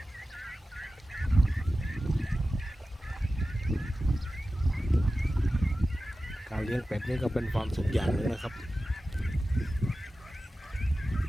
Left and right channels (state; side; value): normal; both; correlation 0.94